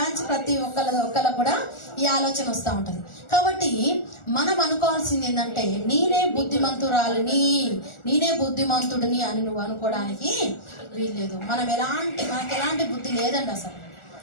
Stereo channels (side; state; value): right; late; 1.4 ms